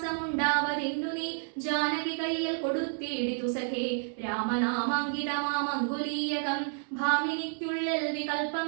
നീ ജാനകി കയ്യിൽ കൊടുത്തിടിതു സഖേ രാമനാമാങ്കിതമാമങ്കുലീയകം ഭാമിനിക്കുള്ളിൽ വികൽപ്പം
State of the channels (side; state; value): left; silent; 58 dB below the other